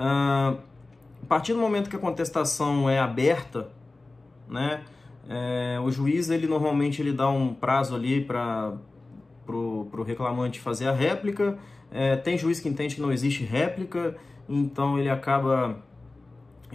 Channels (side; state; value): right; quieter; 3.2 dB